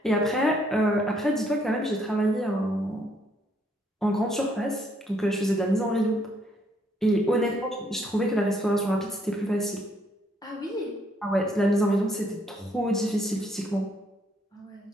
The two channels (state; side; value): normal; both; correlation 0.69